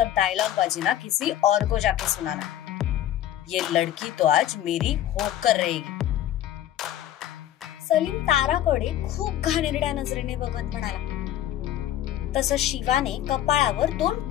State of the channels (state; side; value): quieter; right; 12.0 dB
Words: डायलॉग बाजी ना किसी और को जाके सुनाना. ये लड़की तो आज मेरी होकर रहेगी. सलीम ताराकडे खूप घाणेरड्या नजरेने बघत म्हणाला. तसं शिवाने कपाळावर 2